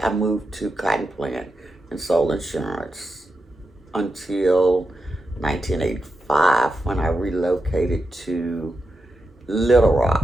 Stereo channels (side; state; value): both; normal; correlation 0.88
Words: I moved to Cotton Plant and sold insurance until 1985 when I relocated to Little